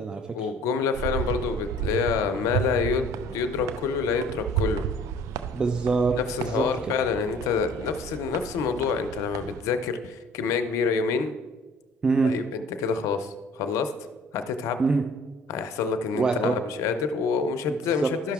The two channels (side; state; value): both; normal; correlation 0.52